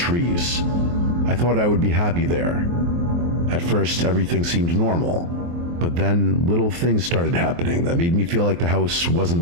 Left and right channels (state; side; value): late; left; 23 ms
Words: I thought I would be happy there. At first, everything seemed normal, but then little things started happening that made me feel like the house